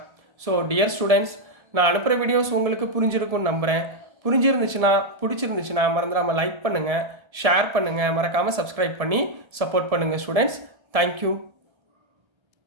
ஸோ டியர் ஸ்டூடெண்ட்ஸ், நான் அனுப்புகிற வீடியோஸ் உங்களுக்கு புரிஞ்சிருக்கும்னு நம்புகிறேன். பிடிச்சிருந்துச்சுன்னா மறந்துடாமல் லைக் பண்ணுங்கள், ஷேர் பண்ணுங்கள், மறக்காமல் சப்ஸ்கிரைப் பண்ணி சப்போர்ட் பண்ணுங்கள் ஸ்டூடெண்ட்ஸ். தேங்க்யூ.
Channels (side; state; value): left; late; 1.7 ms